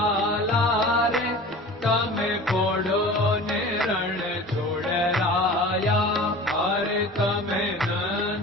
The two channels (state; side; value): normal; both; correlation 0.39